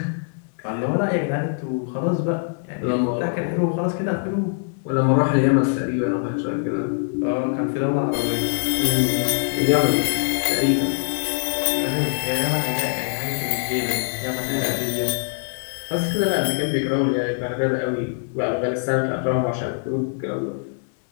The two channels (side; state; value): right; silent; digital silence